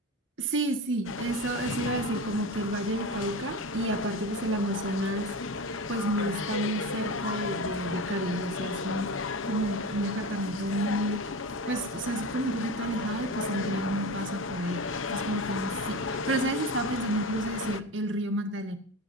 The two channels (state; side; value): normal; both; correlation 0.27